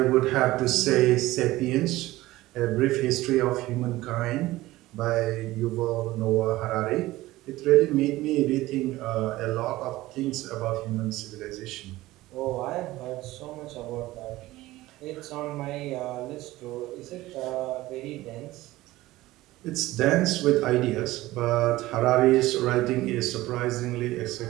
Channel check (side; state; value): left; quieter; 17.6 dB